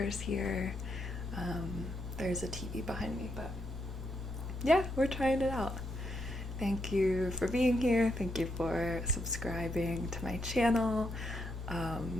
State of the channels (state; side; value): normal; both; correlation 0.80